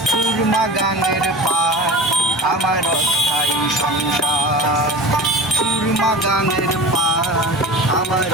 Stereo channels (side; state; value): both; normal; correlation 0.35